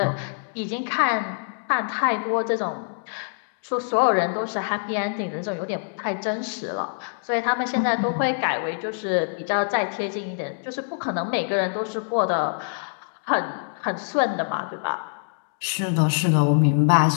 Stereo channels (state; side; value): silent; right; digital silence